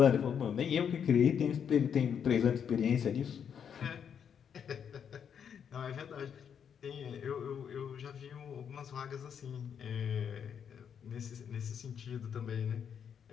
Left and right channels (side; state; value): right; quieter; 7.8 dB